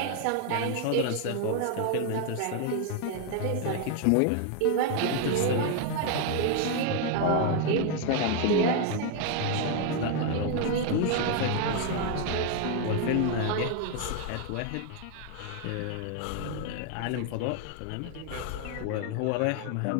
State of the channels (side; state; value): both; different; correlation 0.01